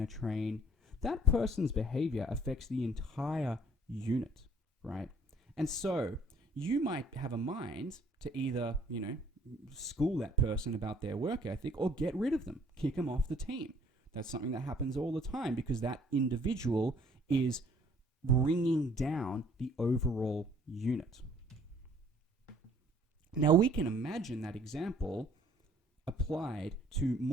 to train. That person's behavior affects the entire unit, right? And so you might have a mind to either, school that person about their work ethic or get rid of them, kick them off the team. That's something that happens all the time because that individual is bringing down the overall unit. Now we can imagine that example applied to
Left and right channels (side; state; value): both; normal; correlation 0.58